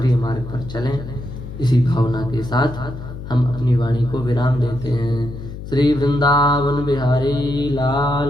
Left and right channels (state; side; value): noise; left; hum, 10 dB below the sound